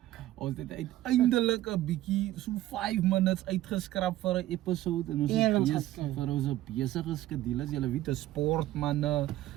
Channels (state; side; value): quieter; left; 14.9 dB